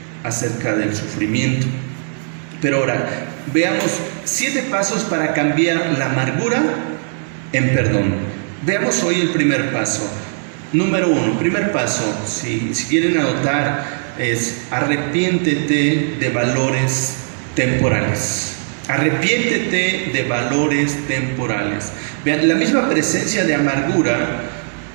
acerca del sufrimiento. Pero ahora, veamos 7 pasos para cambiar la amargura en perdón. Veamos hoy el primer paso. Número 1, primer paso, si quieren anotar, es: arrepiéntete de valores temporales. Arrepiéntete de valores temporales. Vean, la misma presencia de amargura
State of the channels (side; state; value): left; silent; 67 dB below the other